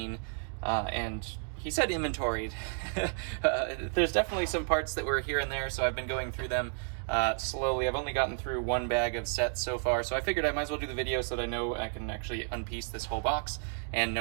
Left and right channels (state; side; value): silent; left; 55 dB below the other